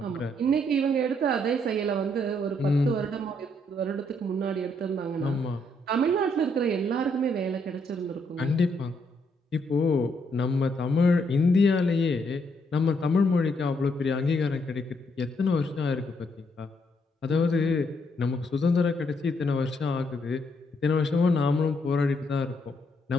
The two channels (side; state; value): both; normal; correlation 0.74